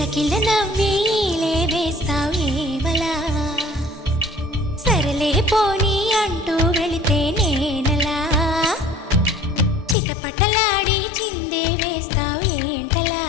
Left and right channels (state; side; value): drops out; right; at 10.0 s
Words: నవ్వేలే వేస్తావేవలా సరలే పోనీ అంటూ వెళితే నేనలా చిటపటలాడి చిందే వేస్తావేంటలా